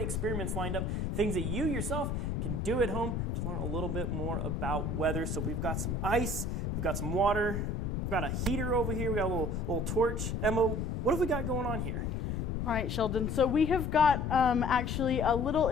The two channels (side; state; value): left; noise; rumble, 1 dB below the sound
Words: experiments lined up, things that you yourself can do at home to learn a little bit more about weather. So we've got some ice, we've got some water, we've got a heater over here, we got a little torch. Emma, what have we got going on here? All right, Sheldon. So we have got actually a little